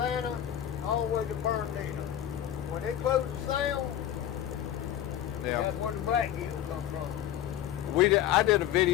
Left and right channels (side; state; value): right; quieter; 11.2 dB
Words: all the way to Bernardino. When they close the sound, that's where the blackgill come from. I did a